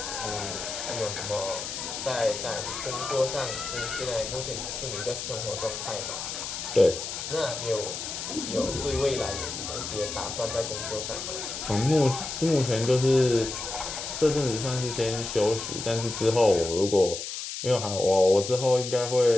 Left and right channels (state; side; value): noise; left; hiss, 6 dB below the sound